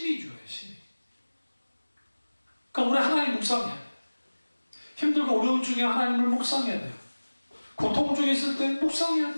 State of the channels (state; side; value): inverted; both; correlation -1.00